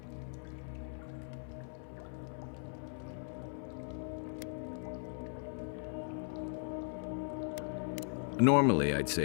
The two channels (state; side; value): silent; right; 52 dB below the other